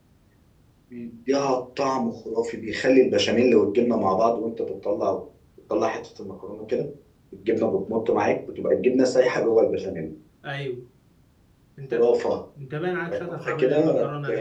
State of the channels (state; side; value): identical; both; correlation 1.00